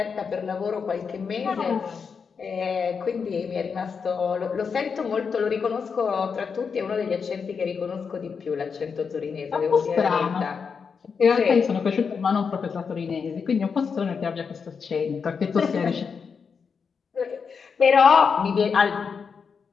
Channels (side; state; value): right; quieter; 5.9 dB